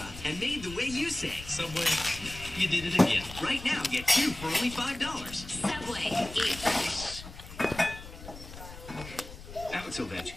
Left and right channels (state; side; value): noise; left; rumble, 14 dB below the sound